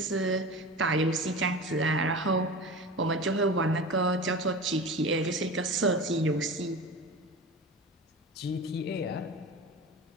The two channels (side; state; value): both; normal; correlation 0.31